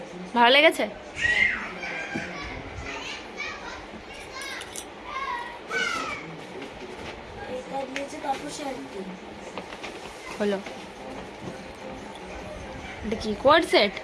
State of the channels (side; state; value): both; identical; correlation 1.00